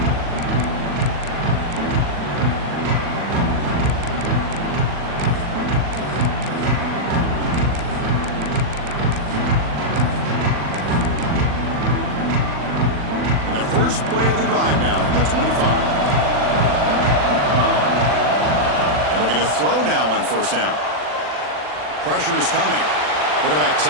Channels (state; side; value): late; left; 40 ms